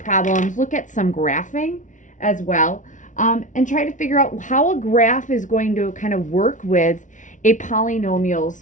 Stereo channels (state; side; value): late; right; 0.37 ms